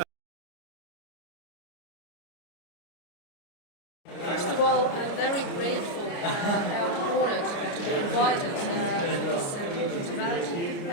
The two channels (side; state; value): right; late; 29 ms